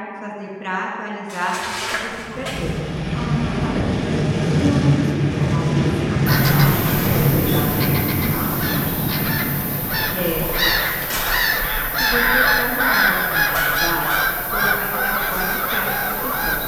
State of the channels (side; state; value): both; identical; correlation 1.00